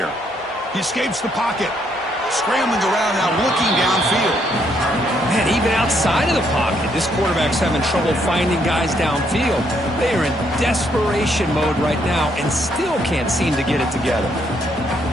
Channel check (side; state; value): both; normal; correlation 0.72